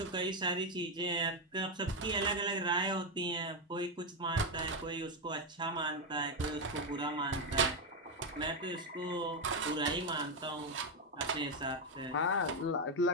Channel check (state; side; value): normal; both; correlation 0.06